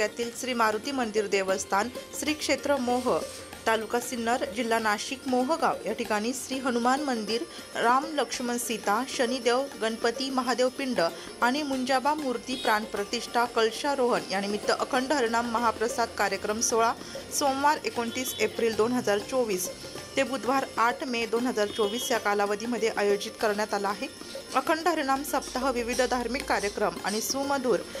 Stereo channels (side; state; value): both; identical; correlation 1.00